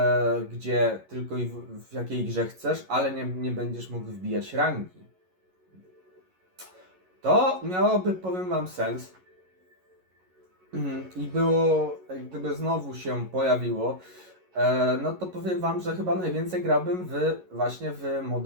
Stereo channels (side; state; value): left; late; 11 ms